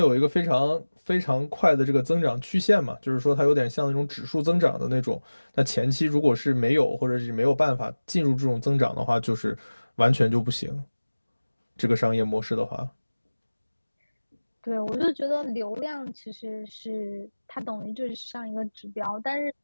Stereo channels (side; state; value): both; inverted; correlation -1.00